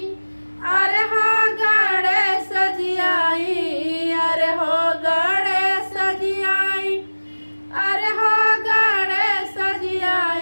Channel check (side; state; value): both; inverted; correlation -1.00